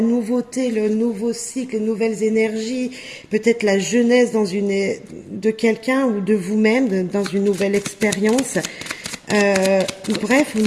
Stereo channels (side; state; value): both; identical; correlation 1.00